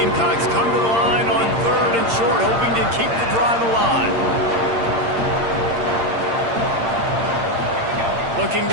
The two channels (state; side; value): late; left; 8.7 ms